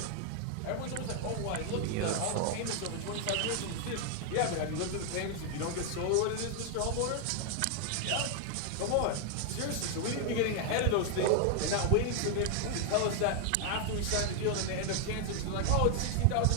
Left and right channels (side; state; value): both; different; correlation 0.00